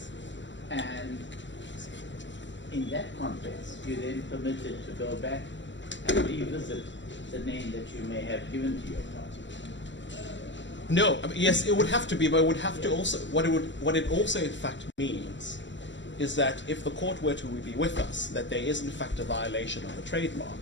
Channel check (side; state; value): right; late; 0.54 ms